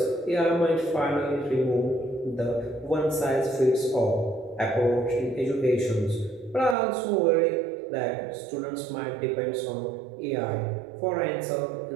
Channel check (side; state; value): left; drops out; at 6.8 s